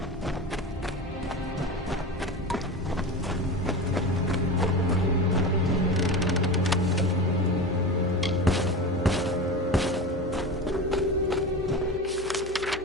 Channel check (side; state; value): both; normal; correlation 0.27